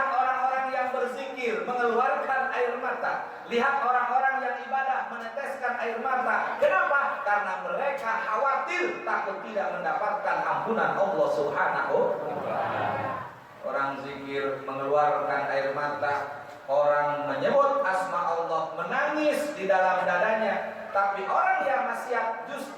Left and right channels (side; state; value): both; identical; correlation 1.00